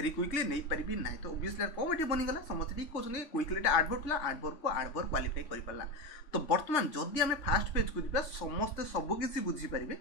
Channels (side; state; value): right; late; 3.5 ms